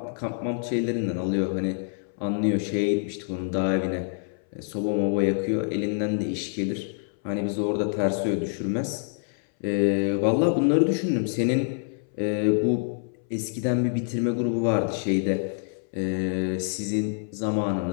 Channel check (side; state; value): right; silent; 61 dB below the other